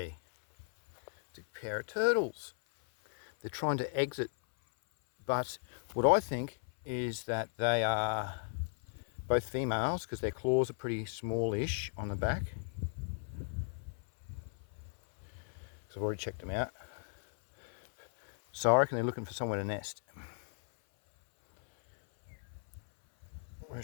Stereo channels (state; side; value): silent; right; 54 dB below the other